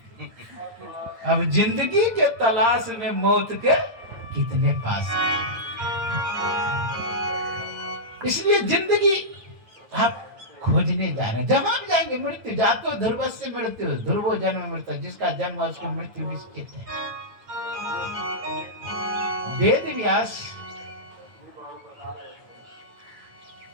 अब जिंदगी के तलाश में मौत के कितने पास है। इसलिए जिंदगी आप खोजने जा रहे हैं, जहां भी जाएंगे मृत्यु, जातो ध्रुवस्य मृत्यु, ध्रुवो जन्म मृत्यु, जिसका जन्म है उसकी मृत्यु निश्चित है। वेद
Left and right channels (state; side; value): late; left; 9.2 ms